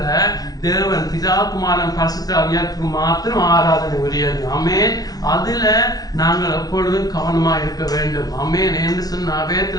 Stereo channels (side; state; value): right; late; 0.19 ms